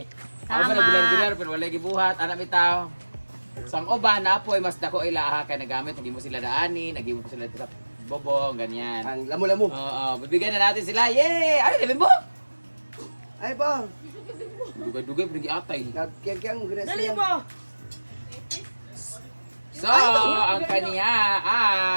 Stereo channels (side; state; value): both; inverted; correlation -1.00